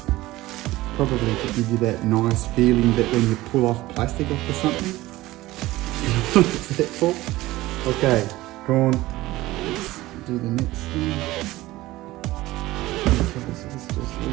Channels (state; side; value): quieter; left; 17.8 dB